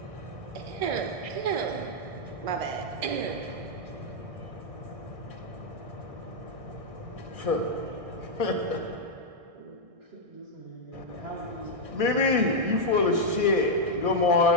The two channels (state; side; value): late; left; 1.6 ms